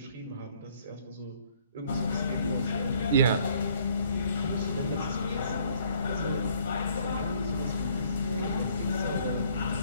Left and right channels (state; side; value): inverted; both; correlation -0.63